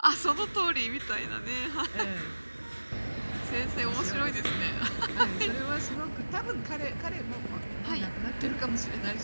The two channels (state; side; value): inverted; both; correlation -1.00